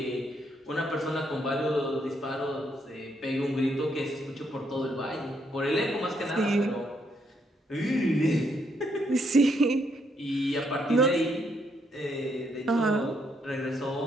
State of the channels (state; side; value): normal; both; correlation 0.74